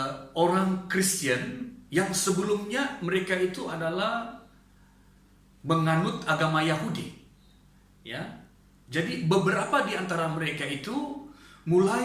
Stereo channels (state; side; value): identical; both; correlation 1.00